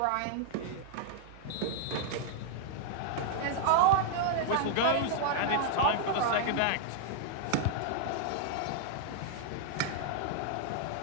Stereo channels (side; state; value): both; different; correlation -0.01